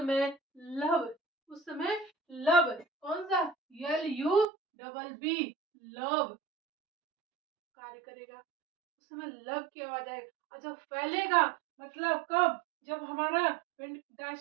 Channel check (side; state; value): left; drops out; at 4.5 s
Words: लब, उस समय लब, कौन सा, LUBB, लब कार्य करेगा। उस समय लब की आवाज आएगी। और जब फैलेगा, मतलब कब, जब हमारा